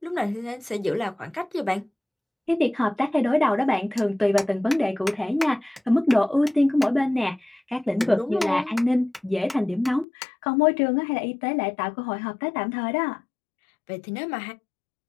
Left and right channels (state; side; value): drops out; right; at 10.1 s